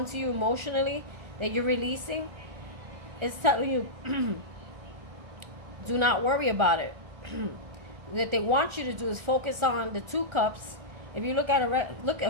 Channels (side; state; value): left; late; 1.4 ms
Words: to you emotionally that you're releasing, it's telling you do not worry about it. What they want you to do is focus on the 2 cups. If you look at